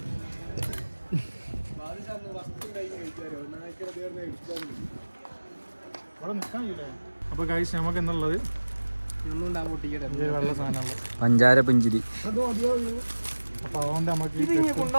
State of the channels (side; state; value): both; inverted; correlation -1.00